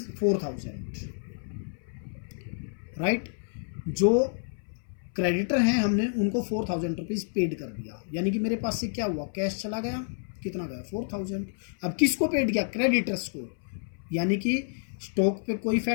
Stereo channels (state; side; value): silent; right; 58 dB below the other